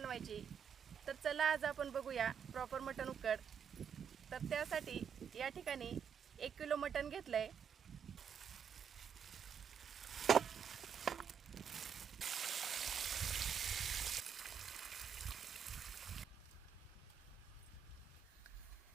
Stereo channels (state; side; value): quieter; left; 7.6 dB